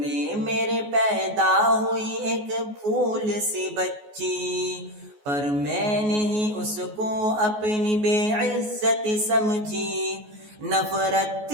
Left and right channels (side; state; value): left; late; 14 ms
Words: میرے پیدا ہوئی ایک پھول سی بچی، پر میں نے ہی اس کو اپنی بے عزت سمجھی۔ نفرت